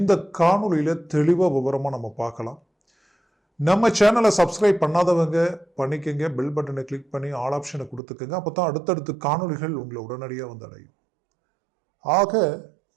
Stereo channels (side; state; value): left; drops out; at 8.0 s